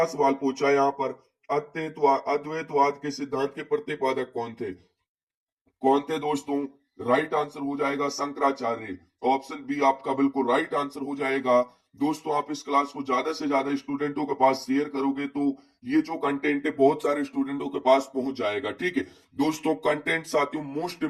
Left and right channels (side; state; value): both; identical; correlation 1.00